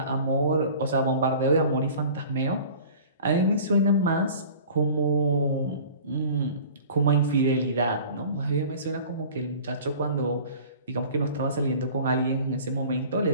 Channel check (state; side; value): inverted; both; correlation -0.44